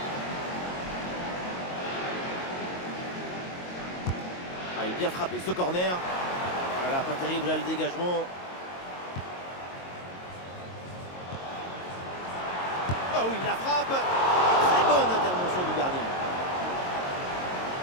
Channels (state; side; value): late; right; 22 ms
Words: Il est bien frappé ce corner. Voilà, pas terrible là le dégagement. Oh oui, la frappe. Très bonne intervention du gardien.